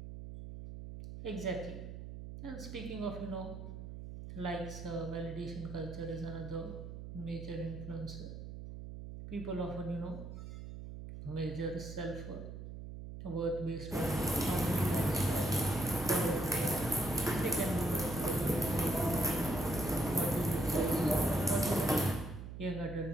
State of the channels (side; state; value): right; noise; hum, 10 dB below the sound